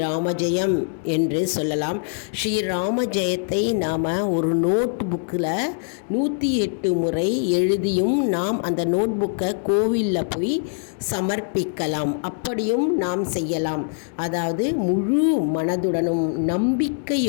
ஜெயம் என்று சொல்லலாம். ஸ்ரீராம ஜெயத்தை நாம் ஒரு நோட் புக்கில் 108 முறை எழுதியும் நாம் அந்த நோட் புக்கை கோவிலில் போய் சமர்ப்பிக்கலாம். அப்படியும் நாம் செய்யலாம். அதாவது முழு மனதுடனும்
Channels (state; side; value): silent; right; digital silence